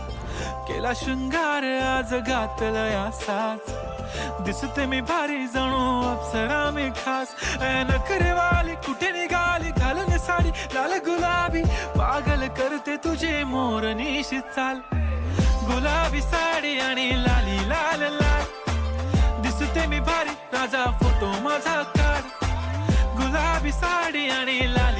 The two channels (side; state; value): both; identical; correlation 1.00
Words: केला शृंगार आज घातलाय असाच, दिसते मी भारी जणू अप्सरा मी खास. नखरेवाली कुठे निघाली घालून साडी लाल गुलाबी, पागल करते तुझे मोरनीशी चाल. गुलाबी साडी आणि लाली लाल लाल, दिसते मी भारी राजा फोटो माझा काढ. गुलाबी साडी आणि